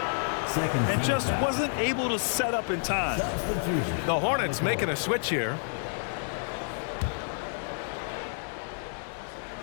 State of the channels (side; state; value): right; silent; digital silence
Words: And just wasn't able to set up in time. The Hornets making a switch here.